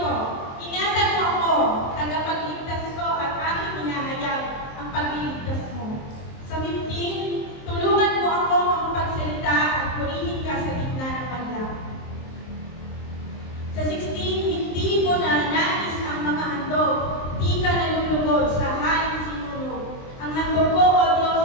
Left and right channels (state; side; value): late; right; 23 ms